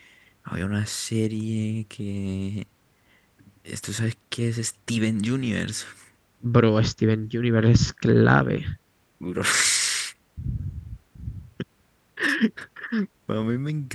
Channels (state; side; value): identical; both; correlation 1.00